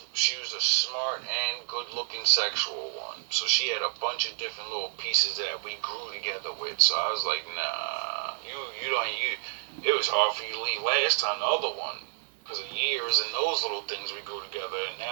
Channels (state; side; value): silent; left; 58 dB below the other